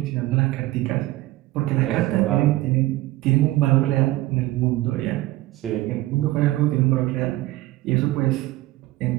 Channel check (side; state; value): left; quieter; 17.4 dB